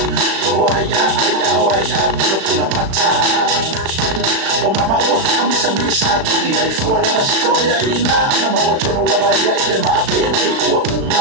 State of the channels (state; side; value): late; left; 36 ms